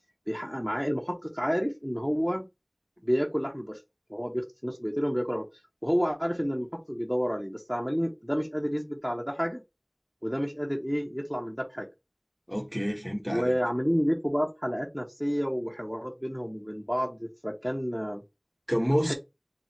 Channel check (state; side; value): identical; both; correlation 1.00